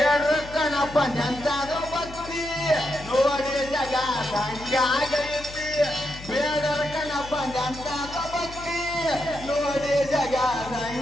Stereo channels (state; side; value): noise; left; hum, 15 dB below the sound